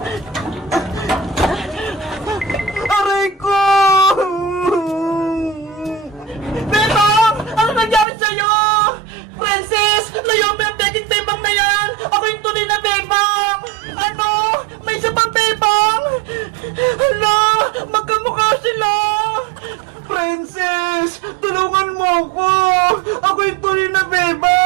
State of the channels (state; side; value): drops out; left; at 8.1 s